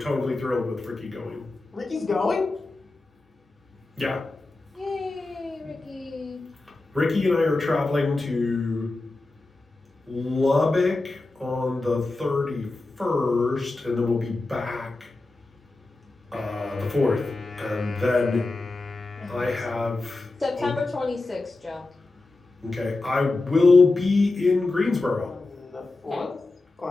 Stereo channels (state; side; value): quieter; right; 3.2 dB